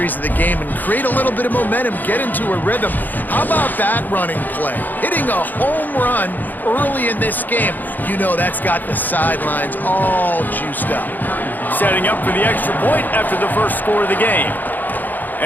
of the game and create a little bit of momentum, get into a rhythm. How about that running play? Hitting a home run early in this game. You know that's got the sidelines all juiced up. Setting up for the extra point after the first score of the game.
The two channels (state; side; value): late; right; 0.086 ms